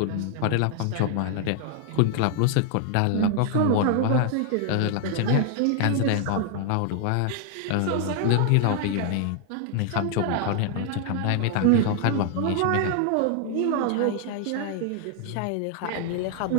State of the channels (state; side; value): different; both; correlation 0.00